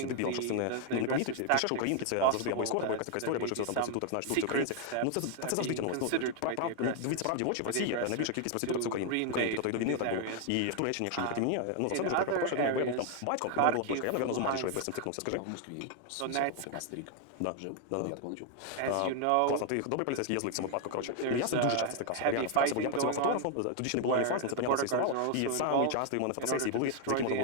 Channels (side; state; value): both; different; correlation 0.00